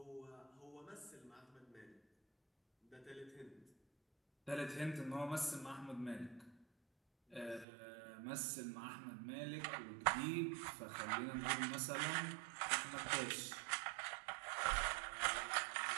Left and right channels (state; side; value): drops out; left; at 7.7 s